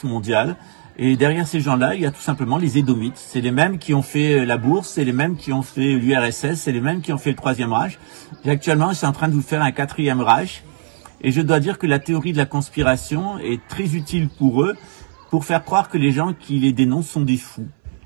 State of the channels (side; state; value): left; silent; 61 dB below the other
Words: mondiale. Et derrière ces gens-là, il y a tout simplement les Édomites. C'est les mêmes qui ont fait la bourse, c'est les mêmes qui ont fait l'URSS, c'est les mêmes qui ont fait le Troisième Reich. Et actuellement, je suis en train de vous faire un Quatrième Reich. Et je dois dire que la théorie de la conspiration est très utile pour eux, pour faire croire que les gens qui les dénoncent sont des fous.